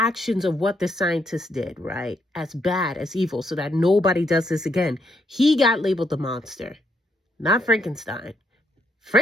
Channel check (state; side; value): normal; both; correlation 0.75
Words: of what the scientists did, right, as bad, as evil, so that nobody does this again, he got labeled the monster. Not Frankenstein.